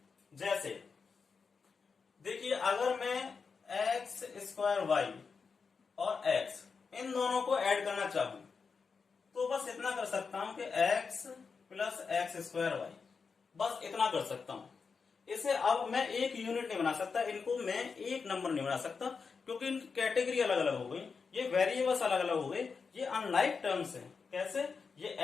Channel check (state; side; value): quieter; right; 5.2 dB